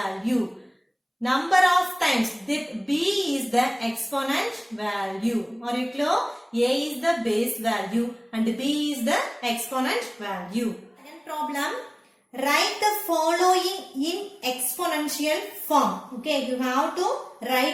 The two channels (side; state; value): both; identical; correlation 1.00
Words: Number of times, b is the exponent value. Are you clear? A is the base value and b is the exponent value. Second problem, write the following in exponential form. Okay, you have to